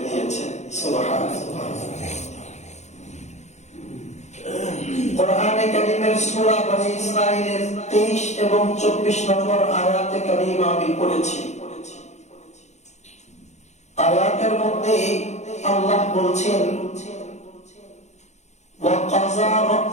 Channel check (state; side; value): late; right; 0.33 ms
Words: দিয়েছেন। সুবহানাল্লাহ। কোরআনে কারীমের সূরা বনী ইসরাঈলের 23 এবং 24 নম্বর আয়াতে কারীমা আমি পড়েছি। আয়াতের মধ্যে আল্লাহ বলছেন, ওয়া কাযা